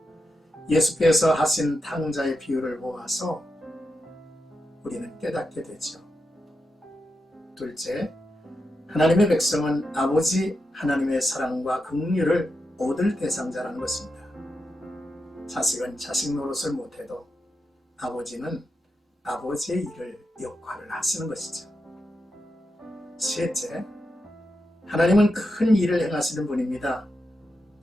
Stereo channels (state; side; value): normal; both; correlation 0.87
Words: 예수께서 하신 탕자의 비유를 보아서 우리는 깨닫게 되죠. 둘째, 하나님의 백성은 아버지 하나님의 사랑과 긍휼을 얻을 대상자라는 것입니다. 자식은 자식 노릇을 못해도 아버지는 아버지의 일을 역할을 하시는 것이죠. 셋째, 하나님은 큰 일을 행하시는 분입니다.